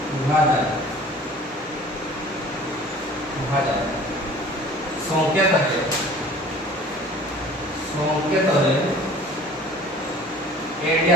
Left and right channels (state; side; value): normal; both; correlation 0.47